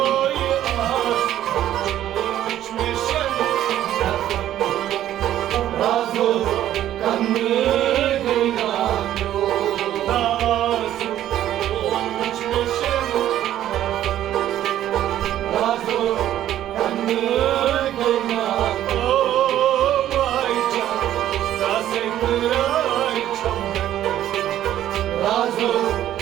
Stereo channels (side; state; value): left; quieter; 12.2 dB